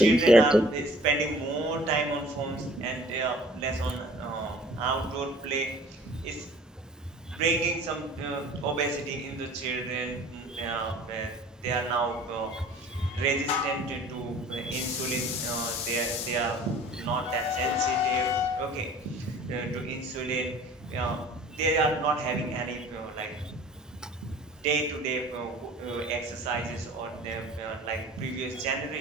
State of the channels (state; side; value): normal; both; correlation 0.49